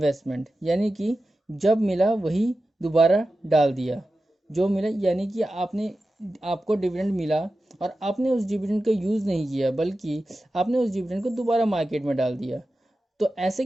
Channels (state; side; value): normal; both; correlation 0.93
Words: यानी कि जब मिला वही दोबारा डाल दिया, जो मिला यानी कि आपको डिविडेंड मिला और आपने उस डिविडेंड का यूज़ नहीं किया बल्कि आपने उस डिविडेंड को दोबारा मार्केट में डाल दिया। तो ऐसे